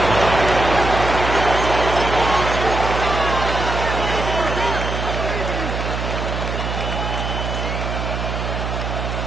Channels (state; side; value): noise; right; hum, 3 dB below the sound